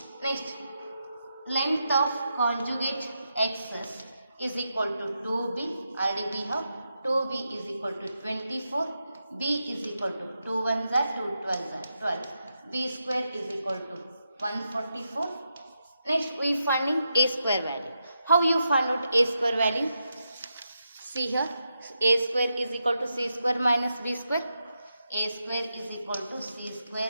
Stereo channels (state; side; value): inverted; both; correlation -0.86